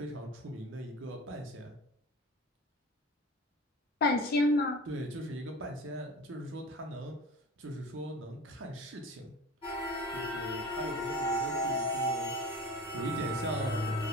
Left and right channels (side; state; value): both; normal; correlation 0.36